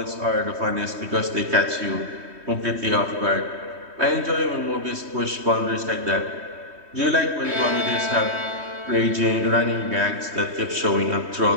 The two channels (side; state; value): left; late; 3.2 ms